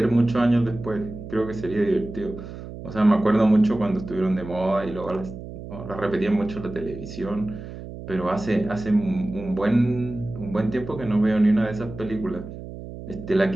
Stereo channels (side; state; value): right; noise; hum, 12 dB below the sound